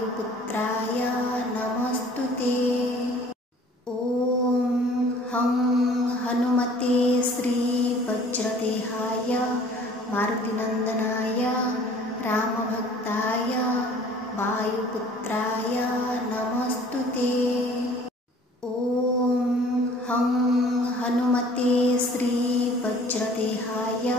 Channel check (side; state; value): both; normal; correlation 0.51